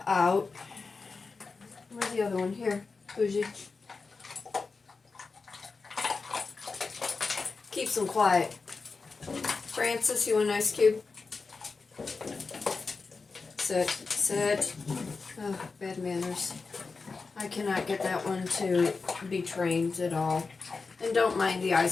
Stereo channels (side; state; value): right; quieter; 4.4 dB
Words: out. Where's the other one? Here, Bougie. Keeps them quiet. Francis, you want an ice cube? Sit. Oh, bad manners. I cannot get that one to be trained at all. And don't mind the